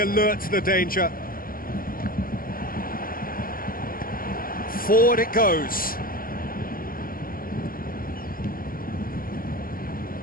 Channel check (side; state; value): right; late; 0.42 ms